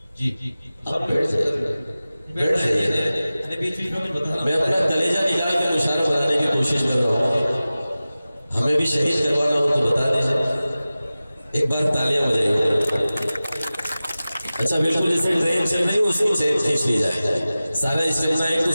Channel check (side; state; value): both; inverted; correlation -0.96